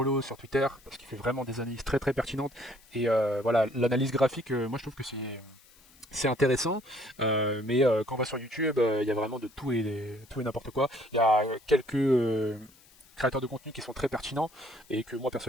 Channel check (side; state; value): left; noise; hiss, 27 dB below the sound